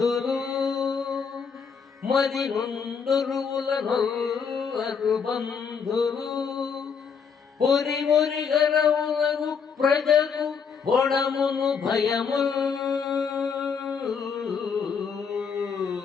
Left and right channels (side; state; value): right; quieter; 6.2 dB